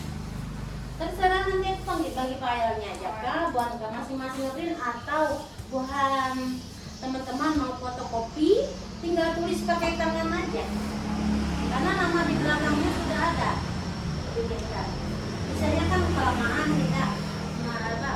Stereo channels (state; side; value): identical; both; correlation 1.00